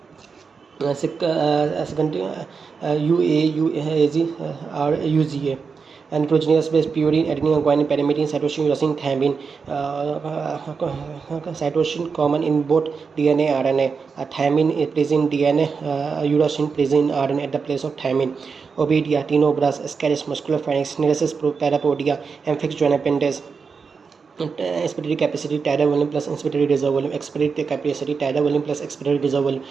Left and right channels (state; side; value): quieter; left; 5.3 dB